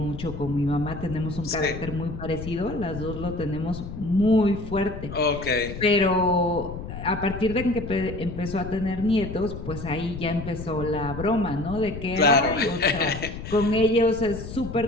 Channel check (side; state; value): left; noise; rumble, 9 dB below the sound